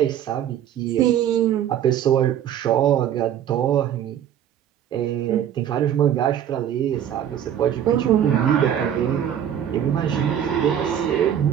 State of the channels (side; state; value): left; quieter; 10.0 dB